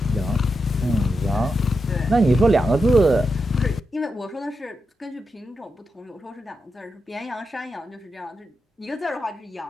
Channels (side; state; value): both; normal; correlation 0.86